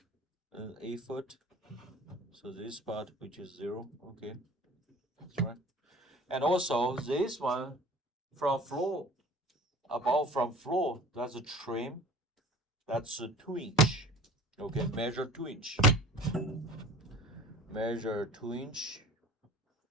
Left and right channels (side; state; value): both; normal; correlation 0.45